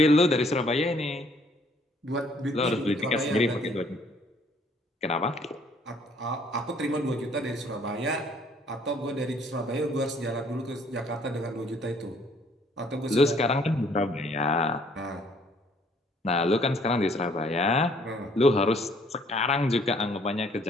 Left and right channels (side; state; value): both; normal; correlation 0.61